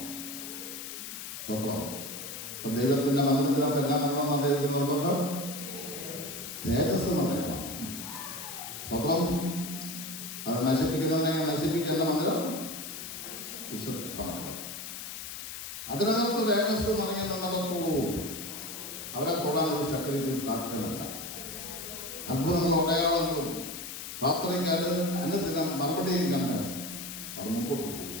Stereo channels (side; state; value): left; noise; hiss, 8 dB below the sound